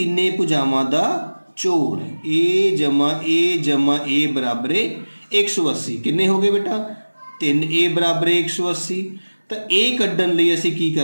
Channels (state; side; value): inverted; both; correlation -1.00